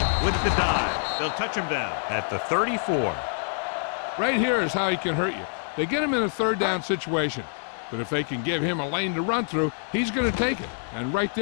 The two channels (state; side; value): silent; right; 59 dB below the other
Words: with the dive. They'll touch him down at the 34. Right here is how he can hurt you. They get him in a 3rd down situation. But if they can give him a lane to run through, he's going to take it. And right